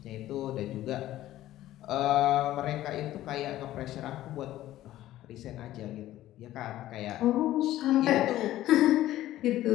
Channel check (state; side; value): quieter; right; 14.3 dB